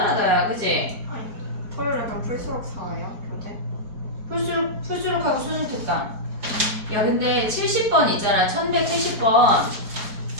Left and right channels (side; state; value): left; late; 4.8 ms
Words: 야 그치? 토요일에 그럼 풀수록 4예요? 교재? 풀수록하고 수능 특강. 야 근데 70번 있잖아. 1170번.